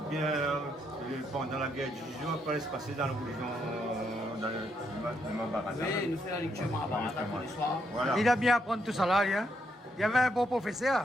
bien pendant la guerre du jour, quoi se passer dans la religion, dans le Mahabharata. oui, nous faisons la lecture Mahabharata tous les soirs. Voilà. Il a bien appris tout ça, là, hein. Il y avait un bon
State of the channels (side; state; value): both; normal; correlation 0.77